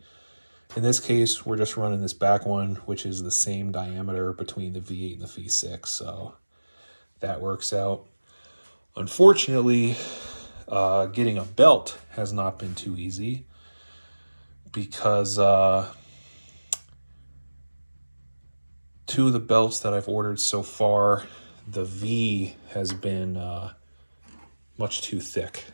in this case, we're just running this back one, which is the same diameter between the V8 and the V6. So that works out. Unfortunately, getting a belt has not been too easy, because two of the belts that I've ordered so far, the V has been much too thick.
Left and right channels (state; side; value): inverted; both; correlation -1.00